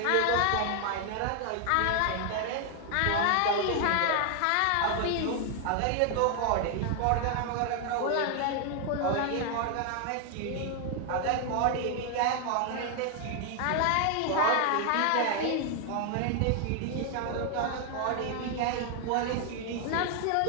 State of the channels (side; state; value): both; different; correlation 0.00